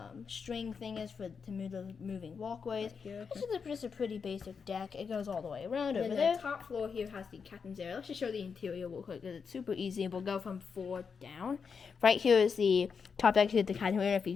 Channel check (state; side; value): quieter; right; 5.9 dB